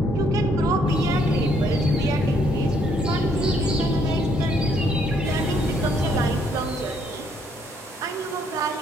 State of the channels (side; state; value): both; normal; correlation 0.68